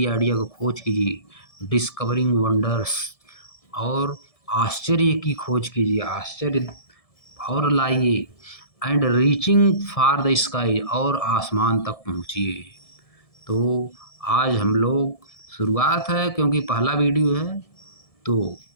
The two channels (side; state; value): right; late; 1.7 ms